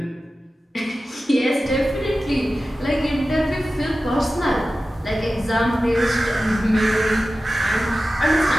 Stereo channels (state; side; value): normal; both; correlation 0.95